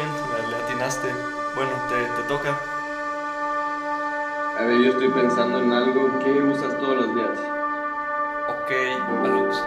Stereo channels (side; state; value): both; identical; correlation 1.00